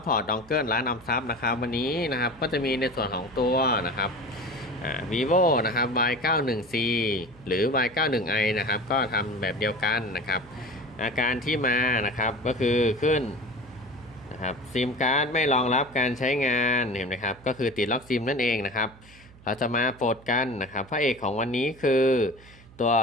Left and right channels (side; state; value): right; noise; hum, 23 dB below the sound